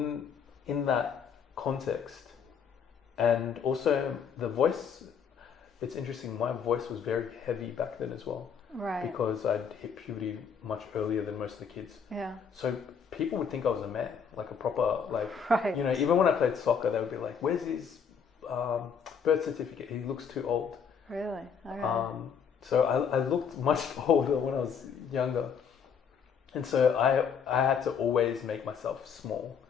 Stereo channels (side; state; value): right; quieter; 6.8 dB